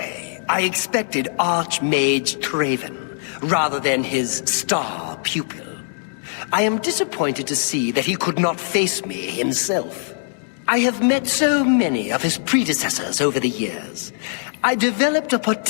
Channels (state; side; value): silent; right; digital silence